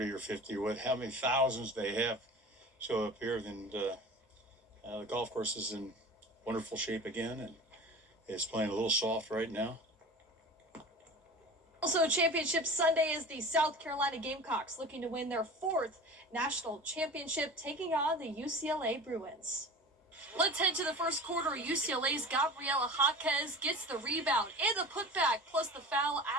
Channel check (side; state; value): both; normal; correlation 0.35